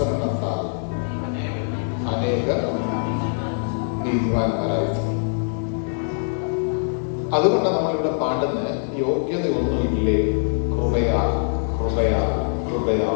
അനേകർ നീതിമാന്മാരായി. അതുകൊണ്ട് നമ്മളിവിടെ പാടുന്ന യോഗ്യതയൊന്നുമില്ലേ, കൃപയാ കൃപയാ കൃപയാ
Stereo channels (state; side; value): silent; right; digital silence